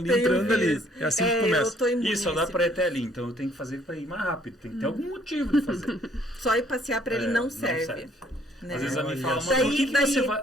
Tem entrando um ali. vírus. É assim que começa. Eu tô imune Isso, só a dá esse para ir até ali, então eu tenho que fazer para ir mais rápido. Tem que ter algum motivo de fazer. Só ir passear pra ele não serve. Né? Às vezes a mim Olha fala, só. mas por que Daí- você vai?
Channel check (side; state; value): both; normal; correlation 0.63